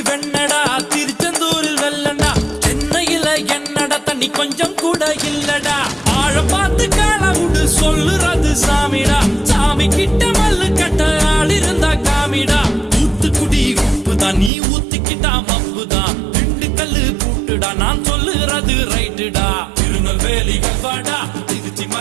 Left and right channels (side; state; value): left; drops out; at 14.5 s